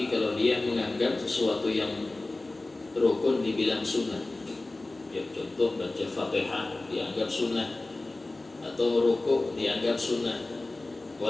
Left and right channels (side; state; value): right; quieter; 3.0 dB